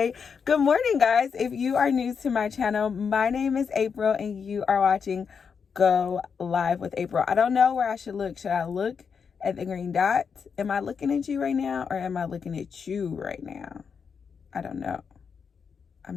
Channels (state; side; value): quieter; right; 6.2 dB